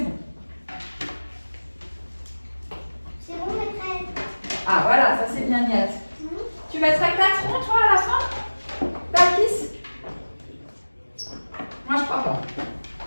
C'est bon, maîtresse. Ah, voilà, ça c'est bien, Niat. Tu mettrais 4 ronds, toi, à la fin? Bakis? Moi, je crois pas.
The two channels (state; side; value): inverted; both; correlation -1.00